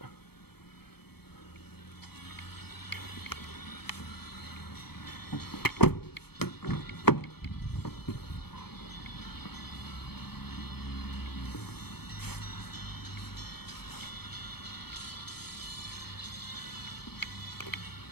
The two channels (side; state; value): right; late; 0.96 ms